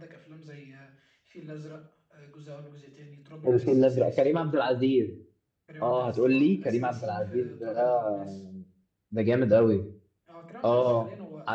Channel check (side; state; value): both; identical; correlation 1.00